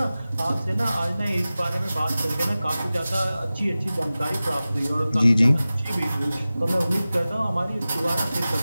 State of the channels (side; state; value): both; inverted; correlation -0.96